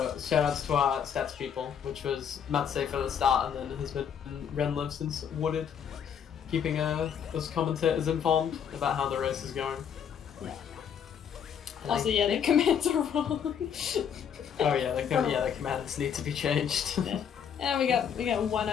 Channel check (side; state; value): right; quieter; 8.0 dB